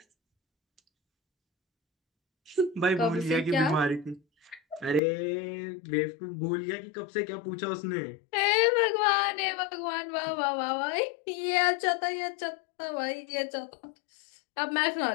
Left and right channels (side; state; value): right; drops out; at 5.0 s